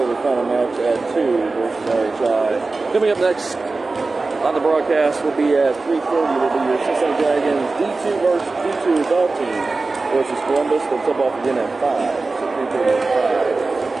the final match at 2 versus RHI. Coming up next on the broadcast will be at 3:30. Will be your Cincinnati Dragons D2 versus D2 adult team versus Columbus. They'll tip off again at 5. So 3:30 at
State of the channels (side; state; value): left; quieter; 3.6 dB